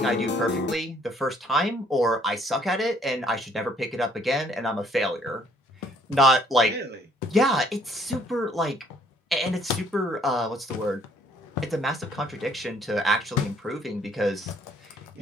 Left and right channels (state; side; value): normal; both; correlation 0.63